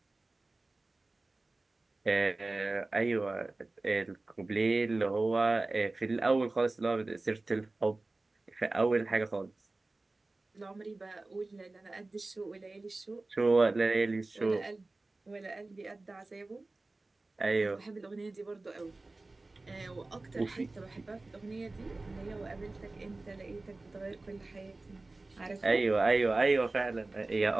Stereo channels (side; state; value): left; quieter; 3.2 dB